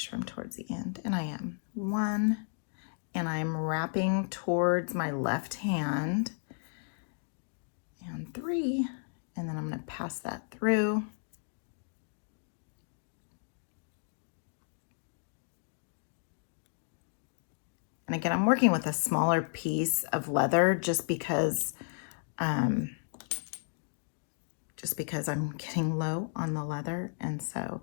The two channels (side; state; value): right; silent; digital silence